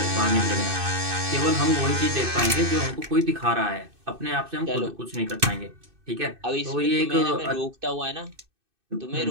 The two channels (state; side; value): late; left; 2.6 ms